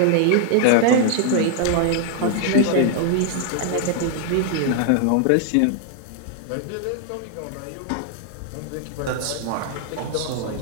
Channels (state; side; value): different; both; correlation 0.00